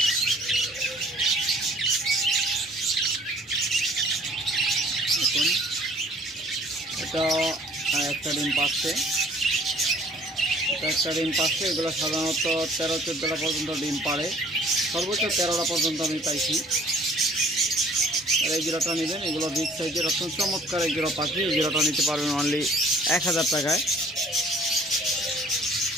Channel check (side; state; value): both; normal; correlation 0.54